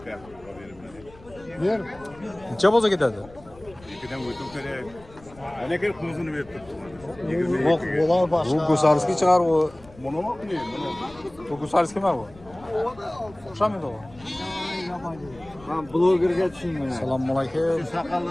Ber. Necha bo'lsa ketadi? İkiden uyutum kerak. Ana kelib ko'zini berib turibdi. Yo'q, bo'lar Bu boshqa. Gusarskiy chiqar bu. Buni mi qilayım bunu? Bu Gusarskiymi bu? O'xshamaydi u. Men blogerga tushunmayman. Assalomu alaykum.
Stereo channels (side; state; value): left; noise; rumble, 23 dB below the sound